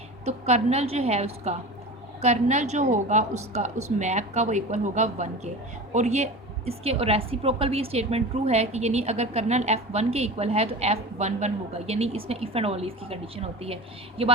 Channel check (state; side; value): normal; both; correlation 0.32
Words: तो कर्नल जो है उसका कर्नल जो होगा उसका उस मैप का वो इक्वल होगा 1 के। और ये इसके रेसिप्रोकल भी स्टेटमेंट ट्रू है कि यानी अगर कर्नल f1 के इक्वल है तो f11 होगा, यानी इसमें इफ़ एंड ओनली इसकी कंडीशन होती है। ये